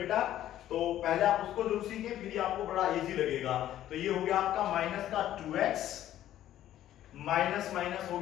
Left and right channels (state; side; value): quieter; right; 12.5 dB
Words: तो पहले आप उसको जरूर सीखें, फिर आपको बड़ा इजी लगेगा। तो ये हो गया आपका माइनस का 2x, माइनस माइनस हो